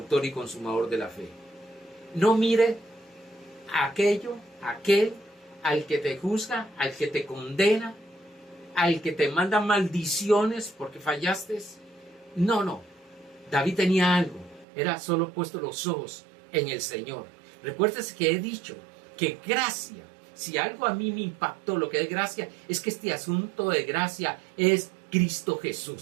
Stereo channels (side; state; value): left; drops out; at 14.7 s